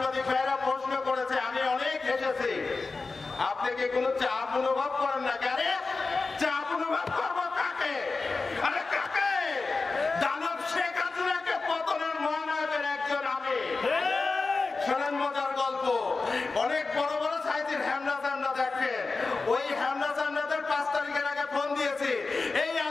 ভাইরা প্রশ্ন করেছে, আমি অনেক হেসেছি। আপনি কি কোনো চাপ অনুভব করেন না? আরে চাপ অনুভব করবো কাকে? আরে কাকে? দানব শেখ হাসিনাকে পতনের মহানায়কের একজন আমি। শোনেন মজার গল্প। অনেক বড় বড় সাইজের হ্যামনা চামড়া দেখেন, ওই হ্যামনা চামড়াদের 5 তারিখের আগে ফোন দিয়েছি, এই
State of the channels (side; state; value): right; quieter; 4.0 dB